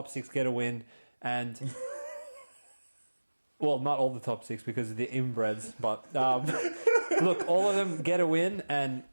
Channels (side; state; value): both; inverted; correlation -1.00